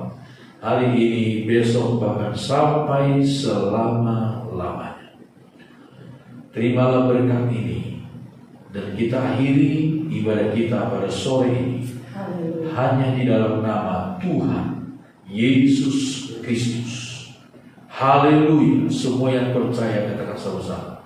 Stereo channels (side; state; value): both; identical; correlation 1.00